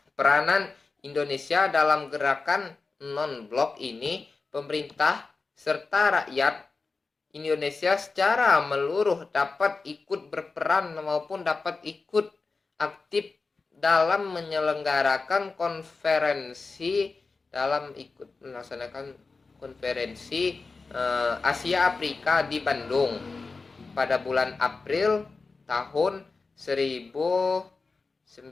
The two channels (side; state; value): right; quieter; 4.1 dB